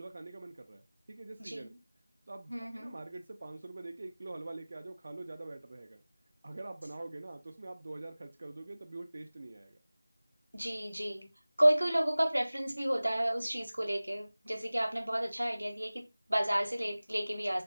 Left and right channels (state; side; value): inverted; both; correlation -0.99